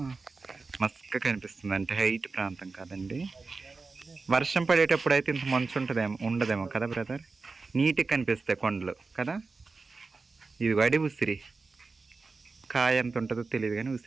మస్క కనిపిస్తుంది. అంటే హైట్ ప్రాంతం కాదండి. వర్షం పడేటప్పుడు అయితే ఇంత మంచు ఉండదేమో కదా బ్రదర్. నీట్గా కనిపిస్తాయి కొండలు కదా. ఇది వడి ఉసిరి కాయ ఎంత ఉంటుందో తెలియదు కానీ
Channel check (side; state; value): left; quieter; 4.1 dB